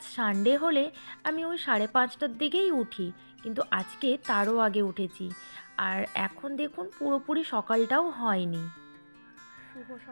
সানডে হলে আমি ওই 5:30টার দিকেই উঠি, কিন্তু আজকে তারও আগে উঠেছি। আর এখন দেখুন পুরোপুরি সকালটাও হয়নি। শুভ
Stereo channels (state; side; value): inverted; both; correlation -1.00